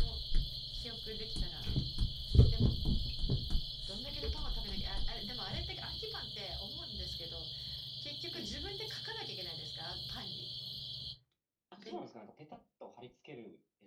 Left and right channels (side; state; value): both; identical; correlation 1.00